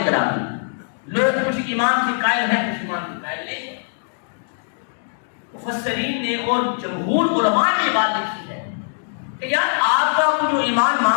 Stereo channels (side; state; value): right; silent; digital silence